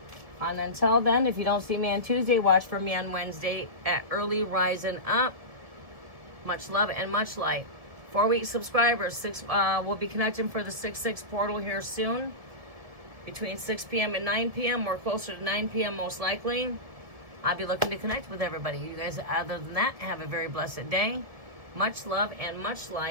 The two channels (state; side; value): late; left; 1.7 ms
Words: And until then, if you don't see me on Tuesday, watch for me on Wednesday at Early Rising Up. Much love and much light. 4-week subscribers. We'll be connecting for the 6/6 portal here soon. Between 6 p.m. and 9 p.m. Or closer to 9 p.m. most likely. I'll be looking to connect with everybody. You guys, other than that, have a very blessed day. Much love and much